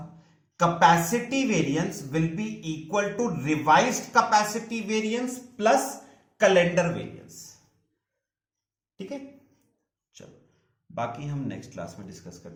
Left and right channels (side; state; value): both; identical; correlation 1.00